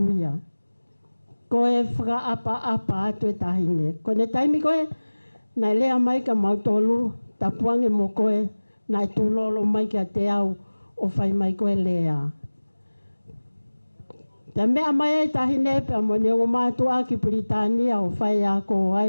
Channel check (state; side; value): inverted; both; correlation -1.00